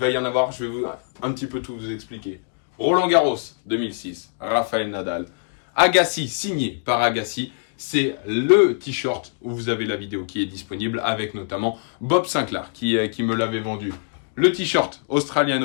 y en avoir, je vais un petit peu tout vous expliquer. Roland Garros 2006, Rafael Nadal. Agassi, signé par Agassi. C'est le t-shirt où vous avez la vidéo qui est disponible avec notamment Bob Sinclair qui me l'avait vendu. Le t-shirt Australian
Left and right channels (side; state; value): right; silent; digital silence